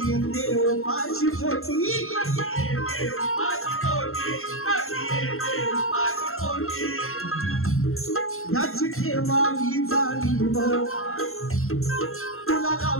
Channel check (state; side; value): late; right; 0.62 ms